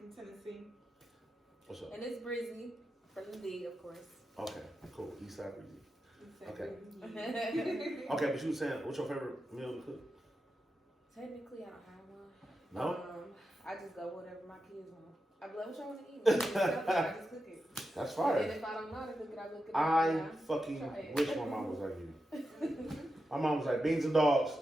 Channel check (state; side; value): normal; both; correlation 0.89